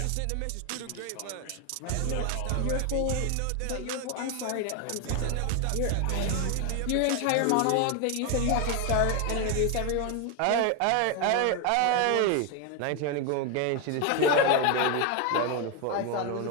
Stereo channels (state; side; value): different; both; correlation 0.01